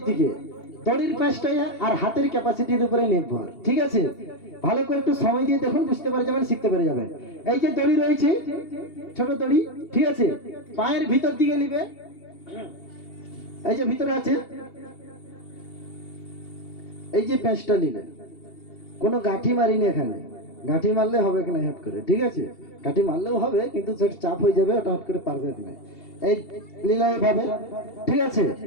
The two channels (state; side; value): late; right; 2.8 ms